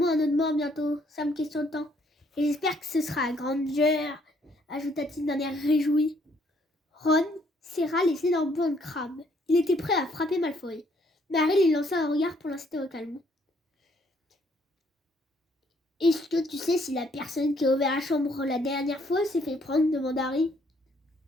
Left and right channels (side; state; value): both; normal; correlation 0.67